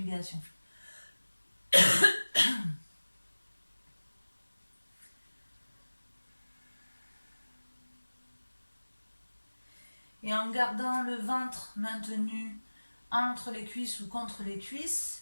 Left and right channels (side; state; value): both; inverted; correlation -1.00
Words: Et en gardant le ventre maintenu entre les cuisses ou contre les